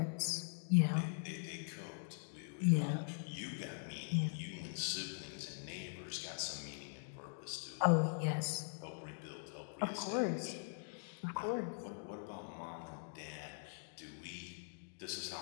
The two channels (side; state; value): right; silent; digital silence